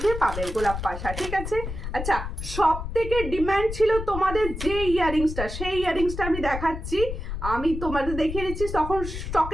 পাবে গোলাপ পাশা, ঠিক আছে। আচ্ছা, সব থেকে ডিমান্ড ছিল তোমাদের যে ইয়াররিংসটা, সেই ইয়াররিংসটা আমি দেখাচ্ছি। আমি তোমাদের দেখিয়ে দিচ্ছি, তখন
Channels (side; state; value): left; noise; rumble, 6 dB below the sound